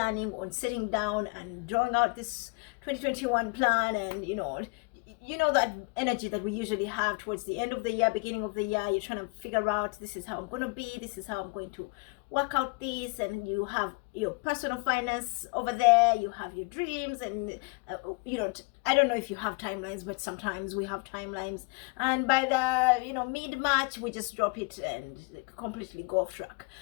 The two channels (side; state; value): right; quieter; 30.7 dB